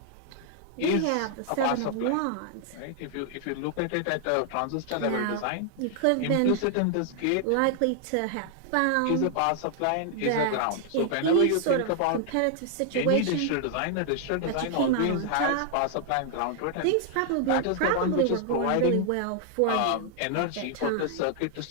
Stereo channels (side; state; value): both; different; correlation 0.00